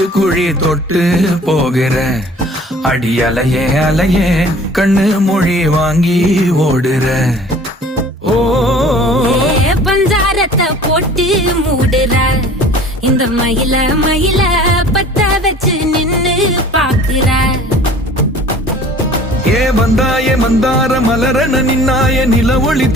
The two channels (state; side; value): normal; both; correlation 0.48